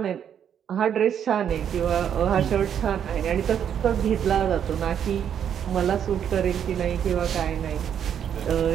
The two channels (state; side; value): quieter; left; 8.8 dB